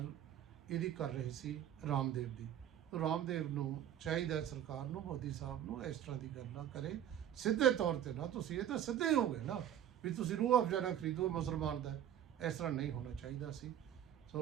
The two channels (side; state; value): left; quieter; 10.5 dB